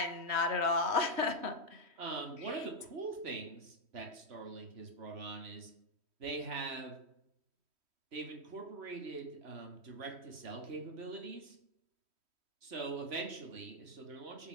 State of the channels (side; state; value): left; late; 3.1 ms